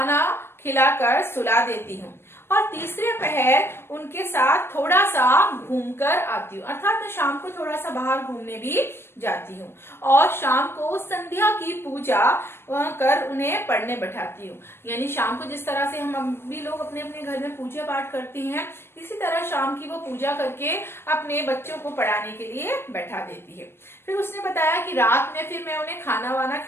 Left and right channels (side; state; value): right; late; 0.12 ms